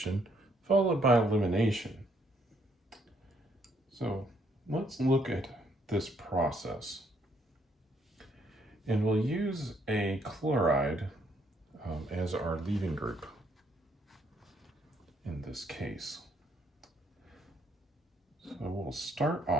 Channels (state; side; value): normal; both; correlation 0.70